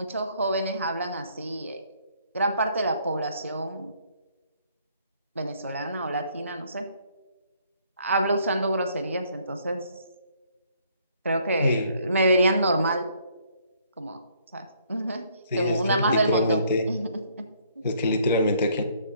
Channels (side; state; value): both; inverted; correlation -0.65